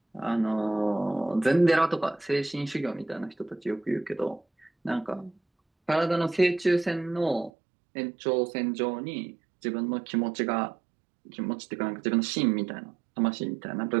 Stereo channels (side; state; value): left; drops out; at 7.5 s